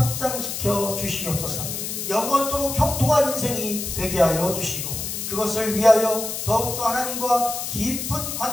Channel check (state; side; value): noise; left; hiss, 5 dB below the sound